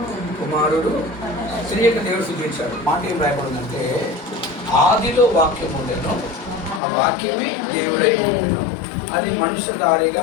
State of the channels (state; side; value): drops out; right; at 6.8 s